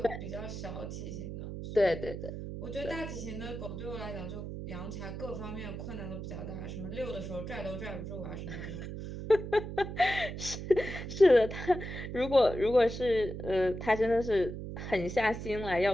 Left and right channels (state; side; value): noise; right; hum, 7 dB below the sound